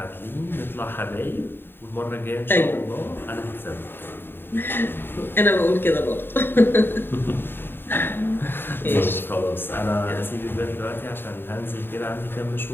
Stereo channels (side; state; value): right; late; 0.10 ms